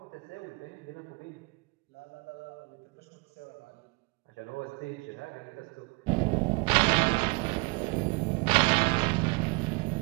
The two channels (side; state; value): left; quieter; 28.3 dB